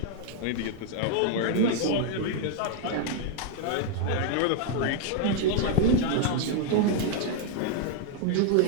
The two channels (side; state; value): both; different; correlation 0.00